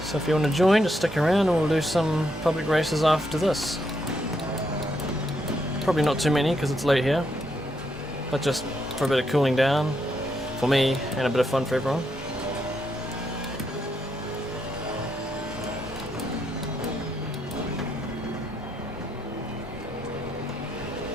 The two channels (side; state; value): both; normal; correlation 0.78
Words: So if you want to join, just stick around and we'll do some public races after this. Probably not too many because it's late here, but just for a bit of cooling down for me and a bit of fun for everyone.